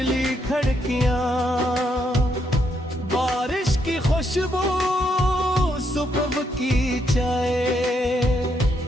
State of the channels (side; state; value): both; normal; correlation 0.76